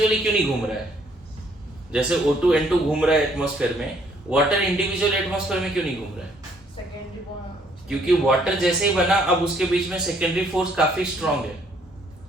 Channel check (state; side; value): normal; both; correlation 0.65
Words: क्यों नहीं घूम रहा है, जैसे O2 N2 घूम रहा है एटमॉस्फेयर में, वाटर इंडिविजुअल एटमॉस्फेयर में क्यों नहीं घूम रहा है, क्योंकि वाटर जैसे ही बना अब उसके बीच में सेकेंडरी फोर्स काफी स्ट्रॉन्ग है,